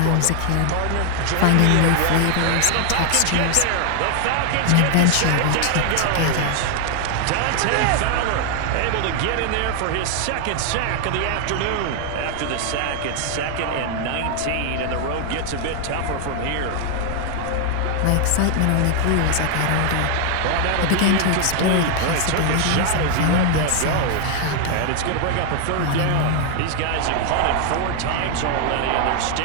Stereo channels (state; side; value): different; both; correlation 0.00